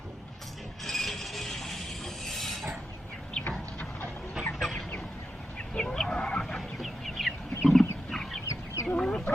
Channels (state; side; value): normal; both; correlation 0.88